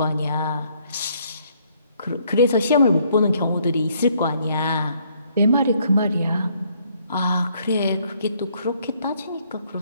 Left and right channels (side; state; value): both; inverted; correlation -0.67